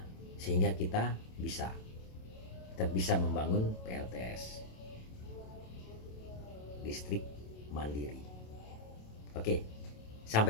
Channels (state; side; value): late; right; 27 ms